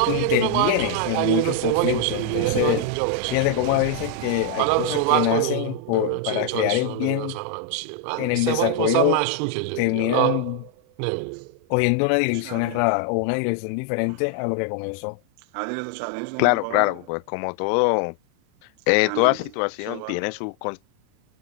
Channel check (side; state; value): both; different; correlation 0.00